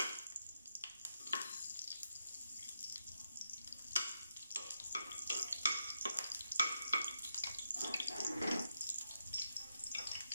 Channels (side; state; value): both; inverted; correlation -0.82